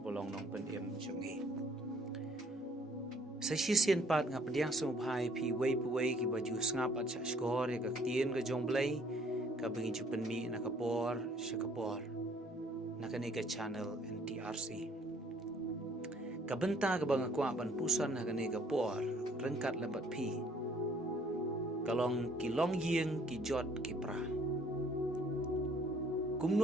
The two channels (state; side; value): normal; both; correlation 0.61